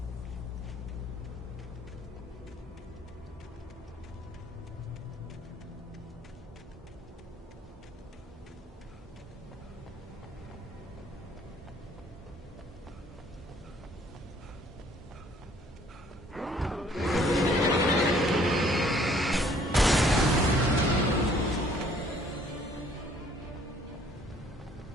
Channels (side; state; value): both; normal; correlation 0.60